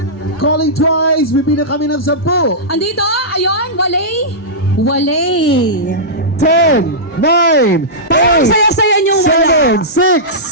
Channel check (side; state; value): both; normal; correlation -0.14